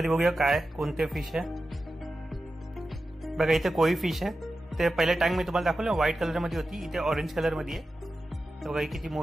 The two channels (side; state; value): both; normal; correlation 0.92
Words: बघूया काय कोणते फिश आहे. बघा इथे कोई फिश आहे. ते पहिल्या टँक मध्ये तुम्हाला दाखवलं व्हाईट कलर मध्ये होती, इथे ऑरेंज कलर मध्ये आहे. बघा ही किती